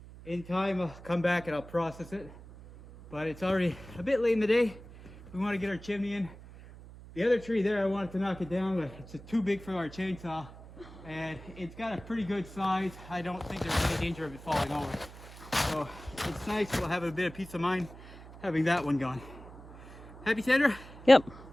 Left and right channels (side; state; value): right; noise; hum, 17 dB below the sound